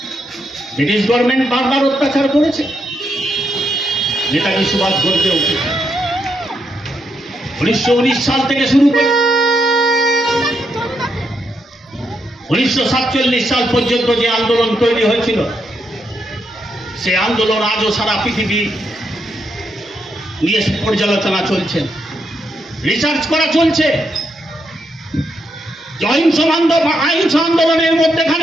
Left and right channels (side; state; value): both; normal; correlation 0.80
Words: ব্রিটিশ গভর্নমেন্ট বারবার অত্যাচার করেছে। নেতাজি সুভাষ গর্জে উঠেছে। 1919 সাল থেকে শুরু করে 1947 সাল পর্যন্ত যে আন্দোলন তৈরি হয়েছিল, সে আন্দোলন আজও সারা পৃথিবী নিয়ে পর্যালোচনা চলছে, রিসার্চ করা চলছে। অহিংস আন্দোলনের